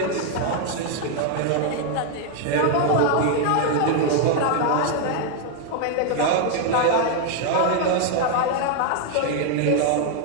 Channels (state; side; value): different; both; correlation 0.00